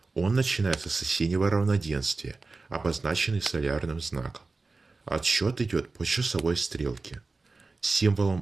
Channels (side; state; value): left; quieter; 3.8 dB